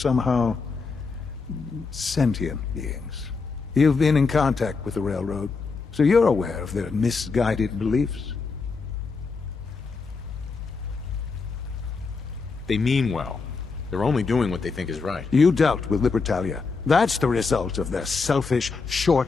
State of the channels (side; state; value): right; quieter; 4.6 dB